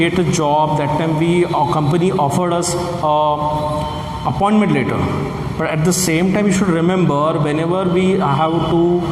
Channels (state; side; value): identical; both; correlation 1.00